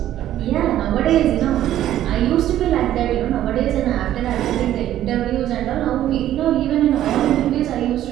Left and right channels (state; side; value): quieter; left; 12.5 dB